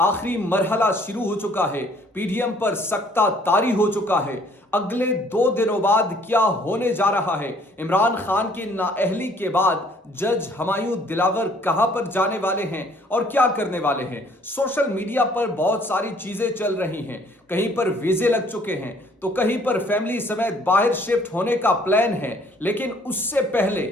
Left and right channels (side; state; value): both; normal; correlation 0.60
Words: आखिरी मरहला शुरू हो चुका है, पीडीएम पर सख्ता तारी हो चुका है। अगले 2 दिनों बाद क्या होने जा रहा है? इमरान खान की नाअहली के बाद जज हमायूं दिलावर कहां पर जाने वाले हैं और क्या करने वाले हैं? सोशल मीडिया पर बहुत सारी चीजें चल रही हैं। कहीं पर वीजे लग चुके हैं तो कहीं पर फैमिली समेत बाहर शिफ्ट होने का प्लान है, लेकिन उससे पहले